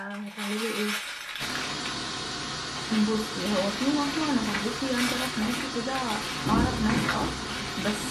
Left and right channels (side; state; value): both; identical; correlation 1.00